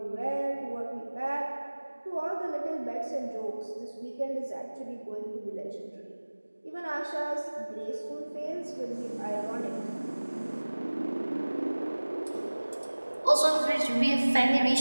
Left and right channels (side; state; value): both; inverted; correlation -1.00